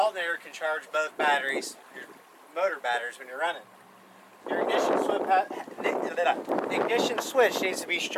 can charge both batteries, your motor batteries, when you're running. Your ignition switch needs to be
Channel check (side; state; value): both; identical; correlation 1.00